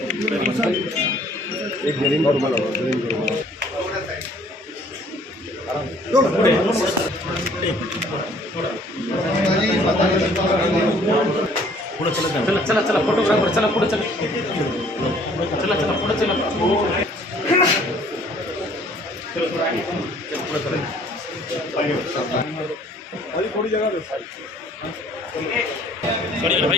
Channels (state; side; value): normal; both; correlation 0.57